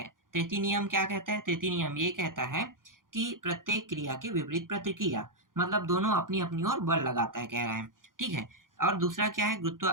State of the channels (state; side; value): late; left; 0.90 ms